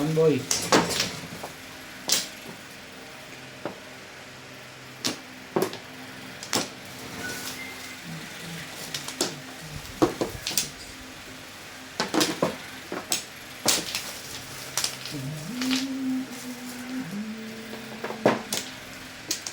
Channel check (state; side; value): identical; both; correlation 1.00